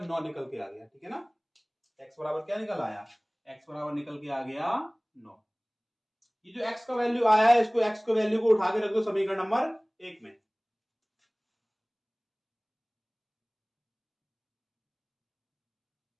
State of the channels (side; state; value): both; identical; correlation 1.00